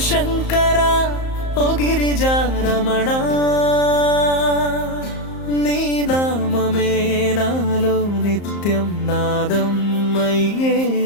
శంకర ఓ గిరిజా రమణ, నీ నామమే నాలో నిత్యం నాదం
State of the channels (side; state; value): right; late; 34 ms